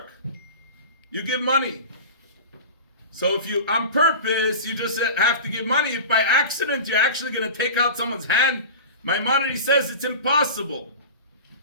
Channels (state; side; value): inverted; both; correlation -0.32